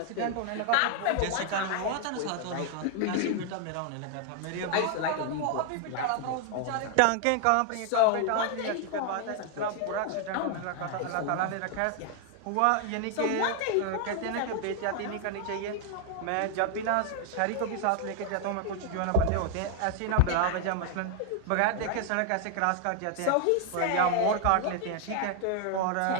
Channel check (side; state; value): both; different; correlation 0.00